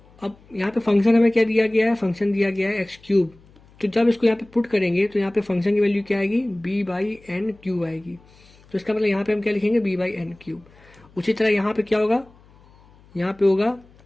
अब यहाँ पे फंक्शन हमें क्या दिया गया है, फंक्शन दिया गया है x3। तो जब इसको यहाँ पे पुट करेंगे तो यहाँ पे फंक्शन की वैल्यू क्या आएगी, b/n³ आएगी। तो इसका मतलब यहाँ पे हम क्या लिखेंगे, b/n³। उसी तरह यहाँ पे क्या होगा, यहाँ पे होगा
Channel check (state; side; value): noise; left; hum, 27 dB below the sound